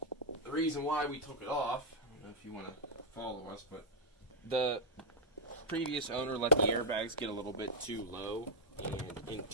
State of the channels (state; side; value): normal; both; correlation -0.05